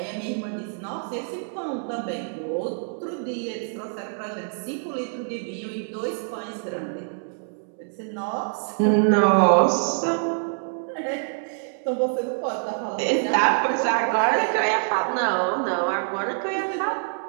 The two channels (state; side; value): silent; left; digital silence